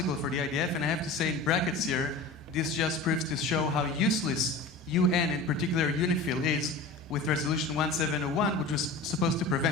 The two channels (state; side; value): quieter; right; 3.1 dB